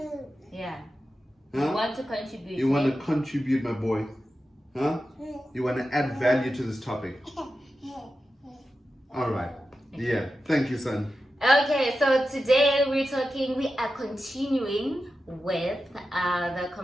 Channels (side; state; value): both; normal; correlation 0.91